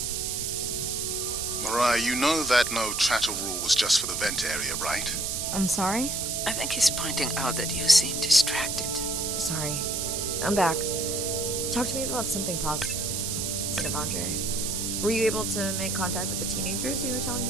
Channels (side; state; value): right; noise; hiss, 1 dB below the sound